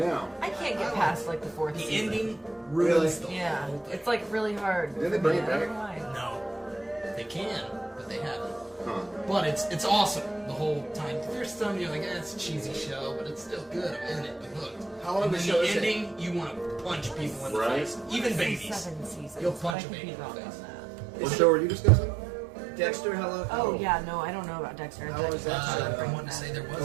I can't get past like the fourth The season. ending ruins the Yeah, whole thing. it's like really hard. Did they for bring me. it I don't back? know why. No, they can, but they haven't. Huh. But it's awesome the whole time. There's some you're like, it's a cheesy show, but it's still good. I'm in it. I'm hooked. How long and of a then show the is it? ending, you want to punch people in the Right. face, even babies. 7 seasons. You'll punch but I a could baby be in the wrong face. on that. What show are you discussing? Dexter, how long? Oh yeah, no, I don't know about Dexter. How was that show? I want to say there was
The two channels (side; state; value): left; drops out; at 19.8 s